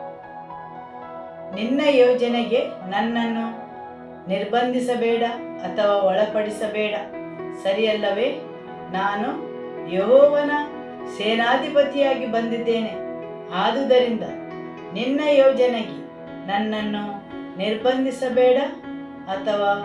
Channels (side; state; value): both; identical; correlation 1.00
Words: ನಿನ್ನ ಯೋಜನೆಗೆ ನನ್ನನ್ನು ನಿರ್ಬಂಧಿಸಬೇಡ ಅಥವಾ ಒಳಪಡಿಸಬೇಡ. ಸರಿಯಲ್ಲವೇ? ನಾನು ಯೆಹೋವನ ಸೇನಾಧಿಪತಿಯಾಗಿ ಬಂದಿದ್ದೇನೆ. ಆದುದರಿಂದ ನಿನ್ನ ಯೋಜನೆಗೆ ನನ್ನನ್ನು ನಿರ್ಬಂಧಿಸಬೇಡ ಅಥವಾ